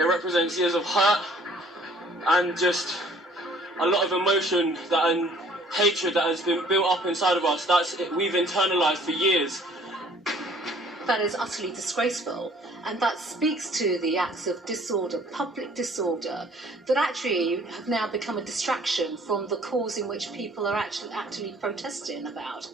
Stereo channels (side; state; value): both; normal; correlation 0.57